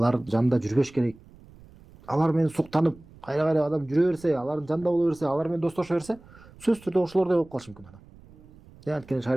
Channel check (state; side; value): noise; right; rumble, 23 dB below the sound